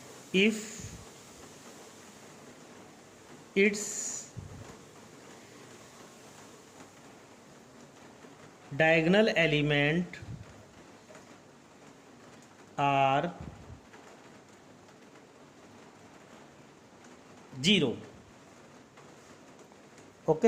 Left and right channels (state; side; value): identical; both; correlation 1.00